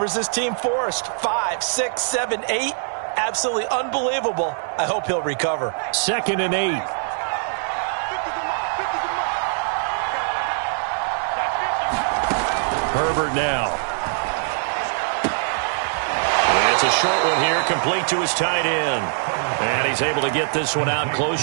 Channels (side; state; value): left; silent; digital silence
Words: this team forced. 5, 6, 7, 8. Absolutely unbelievable. I hope he'll recover. 2nd and 8. Herbert now. It's a short one here, complete to his tight end. And he's able to get this one out